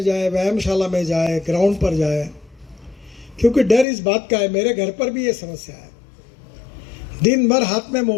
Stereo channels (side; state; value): right; drops out; at 3.9 s